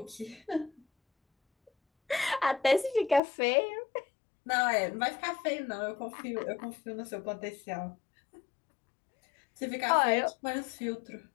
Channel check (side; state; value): right; drops out; at 3.2 s